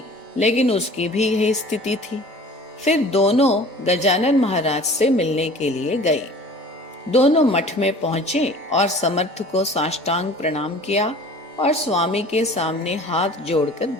लेकिन उसकी भी यही स्थिति थी। फिर दोनों गजानन महाराज से मिलने के लिए गए। दोनों मठ में पहुंचे और समर्थ को साष्टांग प्रणाम किया और स्वामी के सामने हाथ जोड़कर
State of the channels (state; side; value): normal; both; correlation 0.45